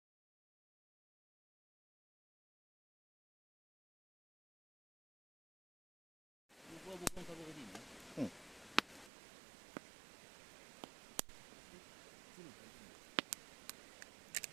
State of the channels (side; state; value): left; drops out; at 9.1 s